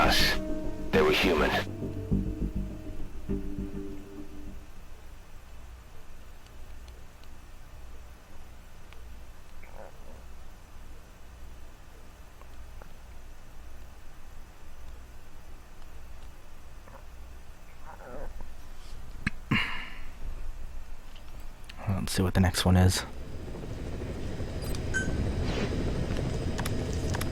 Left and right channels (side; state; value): both; identical; correlation 1.00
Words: They were human. Let's see what the next one is.